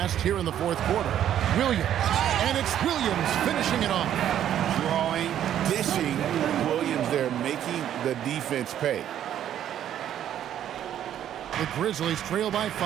here in the fourth quarter. Williams, and it's Williams finishing it off. Drawing, dishing, Williams there, making the defense pay. The Grizzlies trail by 5.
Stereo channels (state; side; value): quieter; left; 10.7 dB